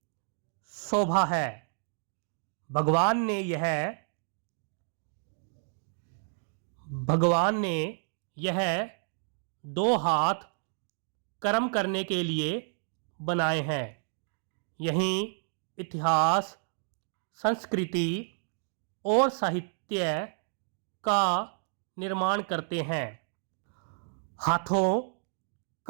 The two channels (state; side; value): silent; left; 57 dB below the other